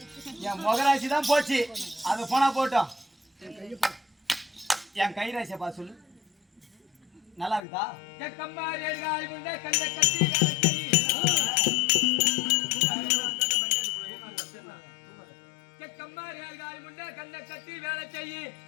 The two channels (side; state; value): right; drops out; at 7.6 s